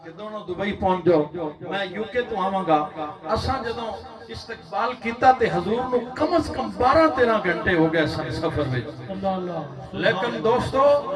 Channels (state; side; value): identical; both; correlation 1.00